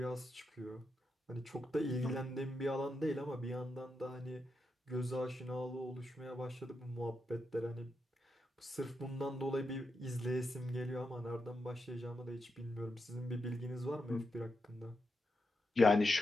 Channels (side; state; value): both; normal; correlation 0.85